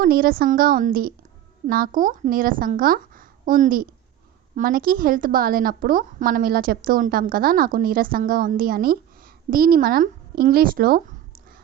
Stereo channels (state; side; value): quieter; left; 11.6 dB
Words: నీరసంగా ఉంది. నాకు నీరసంగా ఉంది. మనకి హెల్త్ బాగాలేనప్పుడు మనం ఇలా చెప్తూ ఉంటాం కదా, నాకు నీరసంగా ఉంది అని. దీన్ని మనం ఇంగ్లీష్లో